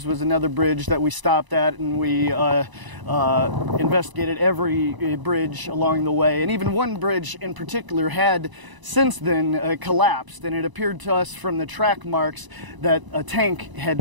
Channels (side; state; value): left; late; 1.0 ms